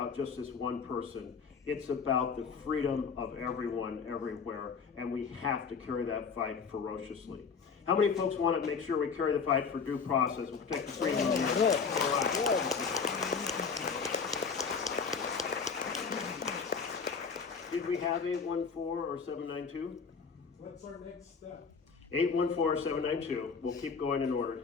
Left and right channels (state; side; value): quieter; right; 5.6 dB